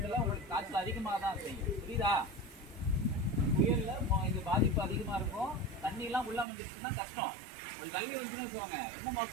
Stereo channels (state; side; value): drops out; left; at 6.5 s